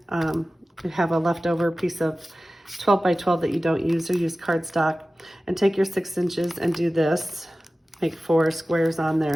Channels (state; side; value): normal; both; correlation 0.96